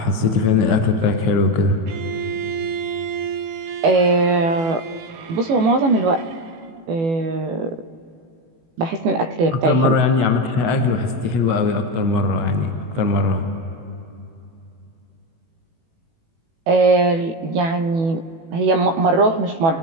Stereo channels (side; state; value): left; late; 18 ms